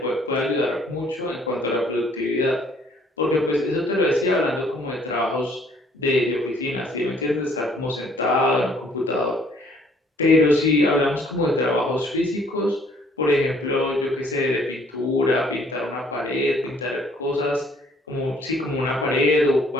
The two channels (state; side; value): normal; both; correlation 0.61